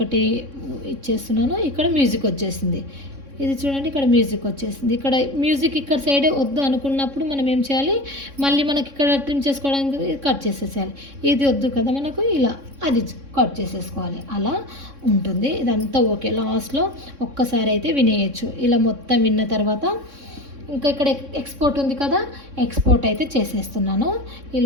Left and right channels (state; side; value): late; left; 3.6 ms